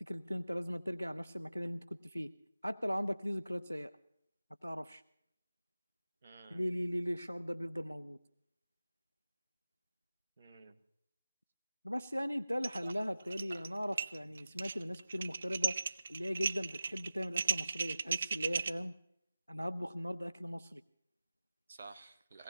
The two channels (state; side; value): inverted; both; correlation -0.95